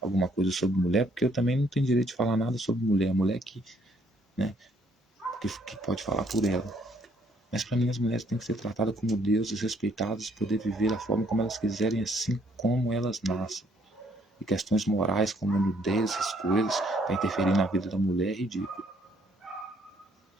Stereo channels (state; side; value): normal; both; correlation 0.67